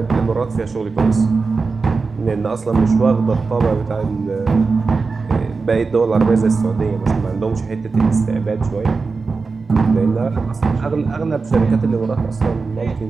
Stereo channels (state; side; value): quieter; left; 4.4 dB